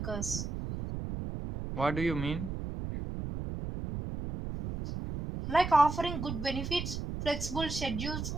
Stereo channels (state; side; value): noise; right; rumble, 5 dB below the sound